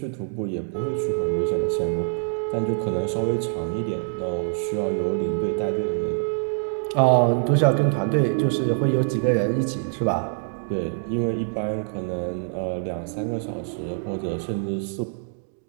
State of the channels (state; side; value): silent; left; digital silence